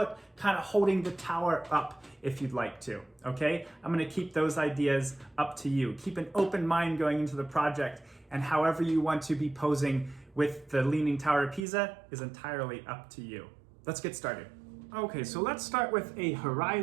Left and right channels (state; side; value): drops out; left; at 11.7 s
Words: kind of holding the tower up if you'd like to, okay? I'm gonna keep those ideas up to you. Keep an open mind going into the project, and however you want to be posing with the Leaning Tower of Pisa is entirely up to you. Let's get started. Okay, so let's start with a